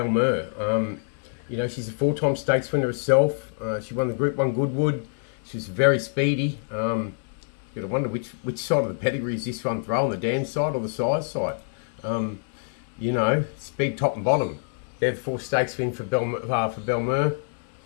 Mer. You know, she's a 4-time stakes winner herself. She won the Group 1 Goodwood. She was very speedy. You gotta wonder which side of the pedigree is this one throwing, the dam side or the size side. You know, speed top and bottom. They're the 4 stakes win for Bel Mer.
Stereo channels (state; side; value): silent; right; 61 dB below the other